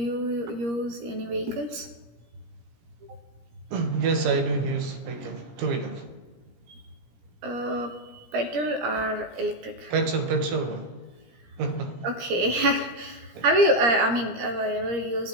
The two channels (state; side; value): late; left; 17 ms